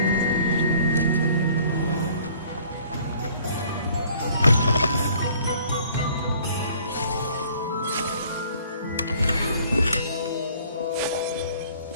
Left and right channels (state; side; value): inverted; both; correlation -0.56